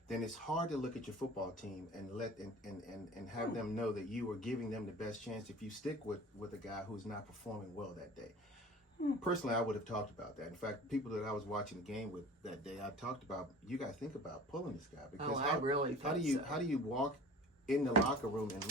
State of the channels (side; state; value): both; normal; correlation 0.41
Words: then it's hard to look at your football team and have them know that you are giving them the best chance if you stick with a guy who's not performing well that day. Personally, I would have talked about that. In fact, people that I was watching the game with that day, I talked about, you got to think about pulling this guy, because I really how do you walk in the locker room